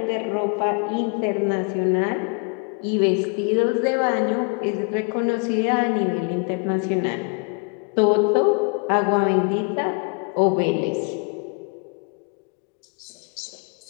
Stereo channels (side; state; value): right; quieter; 36.6 dB